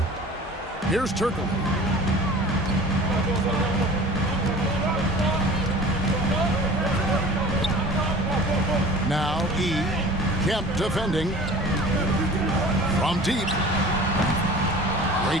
Here's Turkle. Now Kemp defending. From deep.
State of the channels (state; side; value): normal; both; correlation 0.42